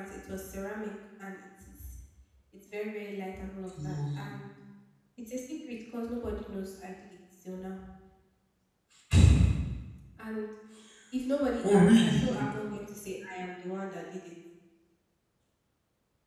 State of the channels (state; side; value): identical; both; correlation 1.00